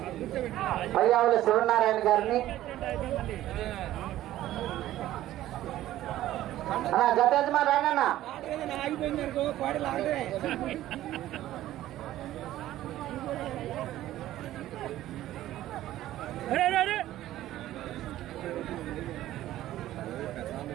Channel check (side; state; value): left; quieter; 14.1 dB